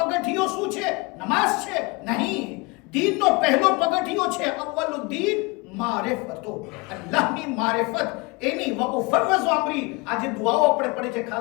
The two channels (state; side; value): quieter; right; 26.7 dB